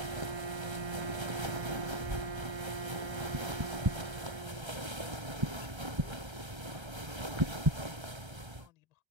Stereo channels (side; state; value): left; late; 1.3 ms